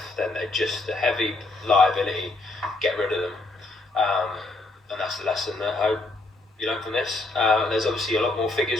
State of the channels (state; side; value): quieter; right; 3.1 dB